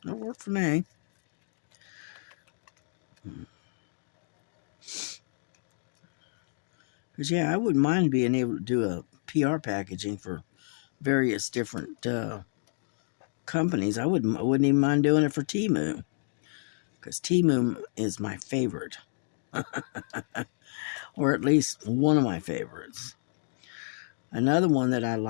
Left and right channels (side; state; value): right; silent; digital silence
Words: That'll work for me. Because, yeah, I wouldn't mind being able to do a PR packaging for various different companies. I wouldn't even mind doing it for Temu, because Temu is my favorite. Or at least one of my favorites. Another one that I